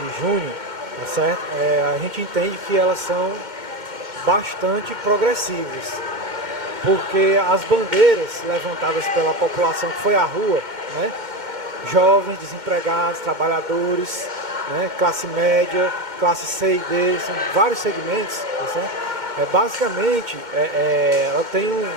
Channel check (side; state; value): left; late; 2.1 ms